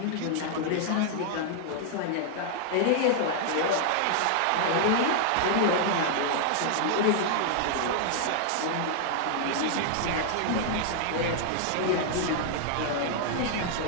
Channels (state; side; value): different; both; correlation 0.00